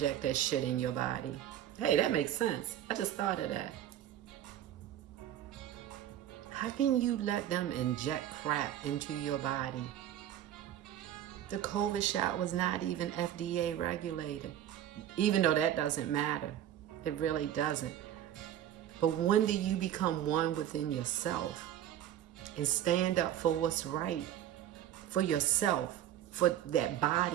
that shit in your body? Hey, that makes sense. I just thought of that. How can you let them inject crap into your body? The COVID shot was not even FDA regulated. Even though that doesn't matter. It really doesn't. But when do you become one within yourself and stand up for what's right for yourself, for that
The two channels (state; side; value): quieter; left; 11.3 dB